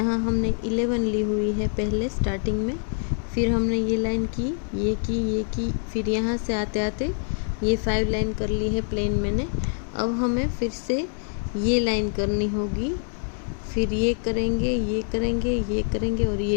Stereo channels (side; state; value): right; silent; 58 dB below the other